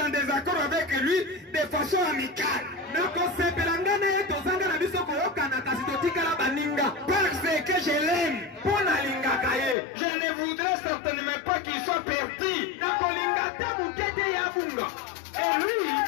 en désaccord avec lui de façon amicale. Parce que je l'aime. Je ne voudrais certainement pas qu'il soit perdu. Et lui,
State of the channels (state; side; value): drops out; right; at 9.8 s